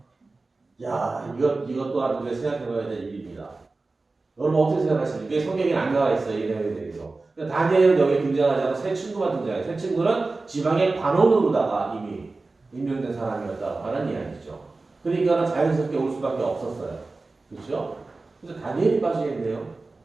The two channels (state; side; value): quieter; left; 3.5 dB